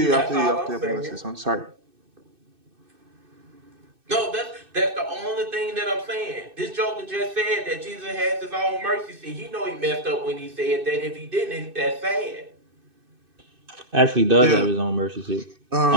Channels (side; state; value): left; late; 2.6 ms